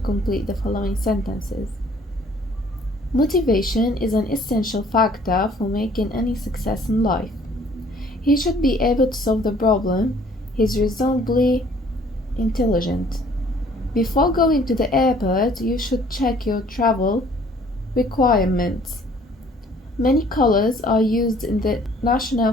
the following sentences. Motivation is an essential factor for making any success in life. He should be able to solve the problem. He's reasonably intelligent. Before going to the airport, you should check your travel requirements. Many colors are used in the national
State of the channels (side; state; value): both; normal; correlation 0.57